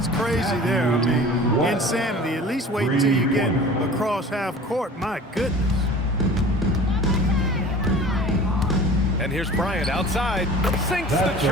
crazy there. I mean, insanity. At least wait until you get across half court. My goodness. And here's Bryant outside. Sinks the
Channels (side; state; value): both; normal; correlation 0.42